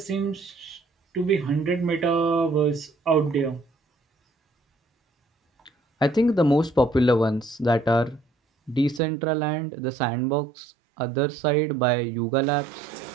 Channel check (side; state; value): left; drops out; at 9.0 s